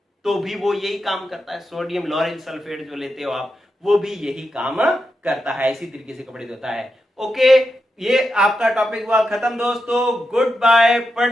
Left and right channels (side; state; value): both; normal; correlation 0.87